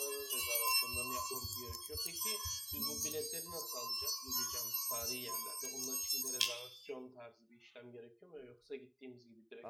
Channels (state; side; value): identical; both; correlation 1.00